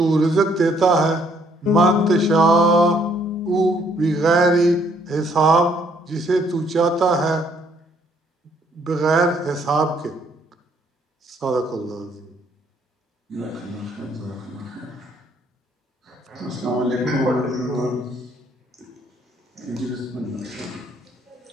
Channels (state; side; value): normal; both; correlation 0.66